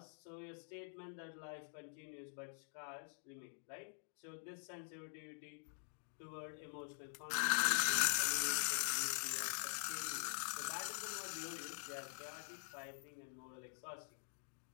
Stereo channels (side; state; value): right; silent; digital silence